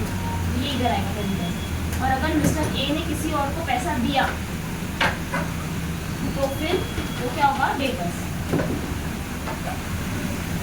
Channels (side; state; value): both; identical; correlation 1.00